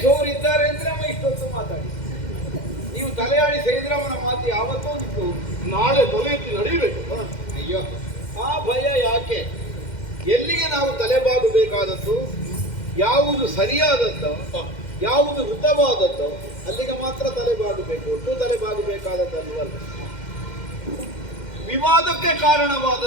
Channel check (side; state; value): right; late; 2.1 ms